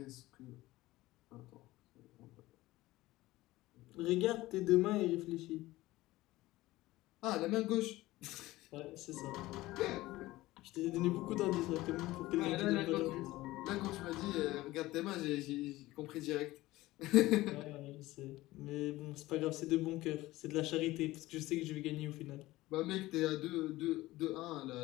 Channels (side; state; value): right; quieter; 18.0 dB